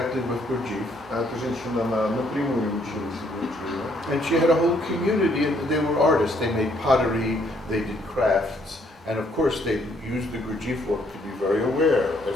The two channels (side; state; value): both; normal; correlation 0.67